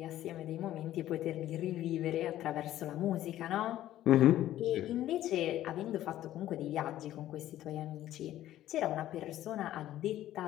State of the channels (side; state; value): right; quieter; 13.3 dB